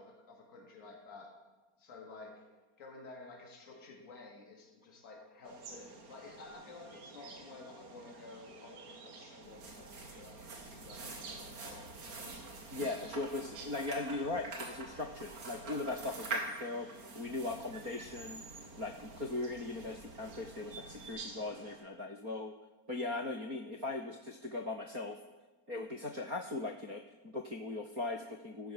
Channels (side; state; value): left; late; 4.3 ms